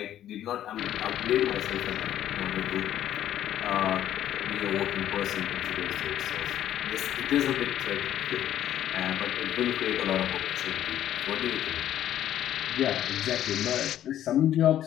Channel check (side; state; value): right; quieter; 11.7 dB